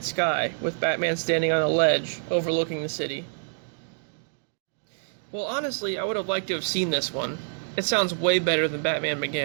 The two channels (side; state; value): left; silent; digital silence